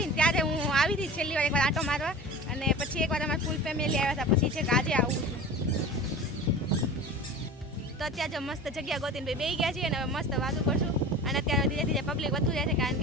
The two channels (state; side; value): normal; both; correlation 0.35